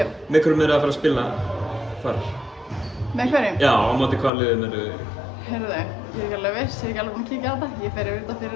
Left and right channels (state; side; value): drops out; right; at 4.3 s